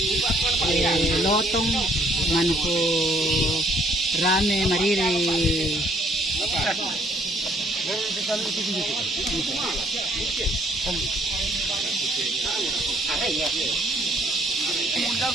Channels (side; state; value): both; normal; correlation 0.64